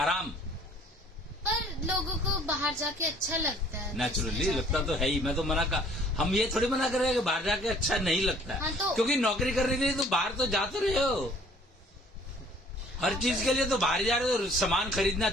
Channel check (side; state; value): both; normal; correlation 0.56